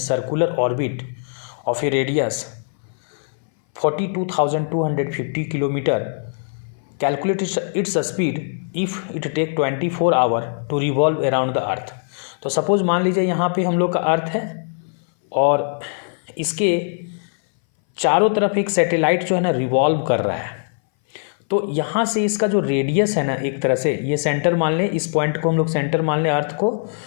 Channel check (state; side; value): silent; right; 61 dB below the other